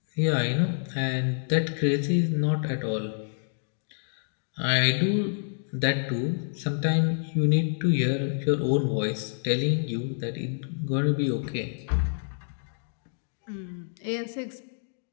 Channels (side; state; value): right; silent; digital silence